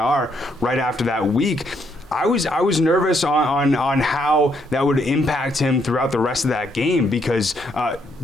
right after that week. I was nervous on how that would impact him throughout the rest of that game because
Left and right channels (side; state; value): both; normal; correlation 0.73